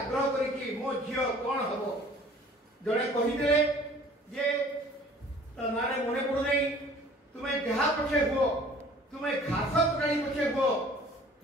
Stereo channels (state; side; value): normal; both; correlation 0.50